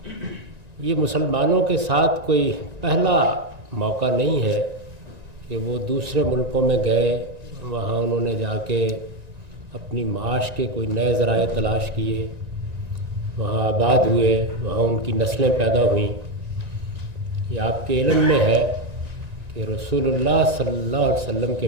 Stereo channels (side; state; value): left; late; 1.9 ms